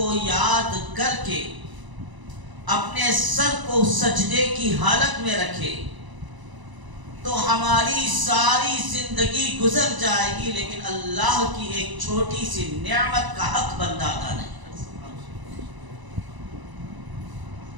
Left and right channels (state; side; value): late; left; 1.0 ms